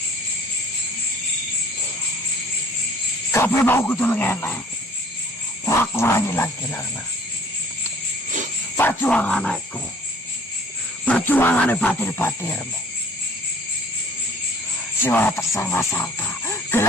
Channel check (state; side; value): normal; both; correlation 0.54